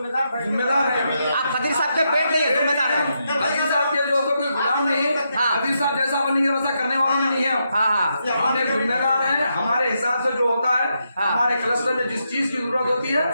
है। आप खदीर साहब के पेट नहीं है, जिम्मेदार है। खदीर साहब के जो कोई गुलाम नहीं है, हाँ। खदीर साहब जैसा बनेंगे वैसा करने वाला नहीं है। हाँ। हम एक जिम्मेदार है, हमारे हिसाब से जो होता है, हमारे क्लस्टर में जिस चीज की जरूरत होती है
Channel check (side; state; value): both; inverted; correlation -0.82